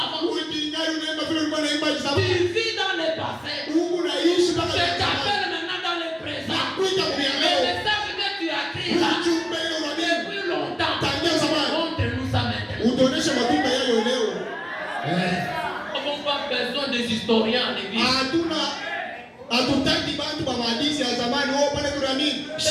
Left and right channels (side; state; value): both; identical; correlation 1.00